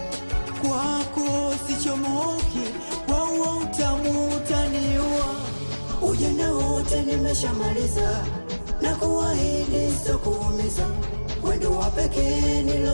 kwako sichomoki, kwa huo utamu utaniua. Ujana wote nimeshamaliza, na kuahidi sitokuumiza. Wendo wa pekee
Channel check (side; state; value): both; inverted; correlation -1.00